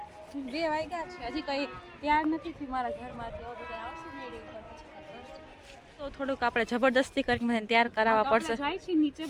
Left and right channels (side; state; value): both; identical; correlation 1.00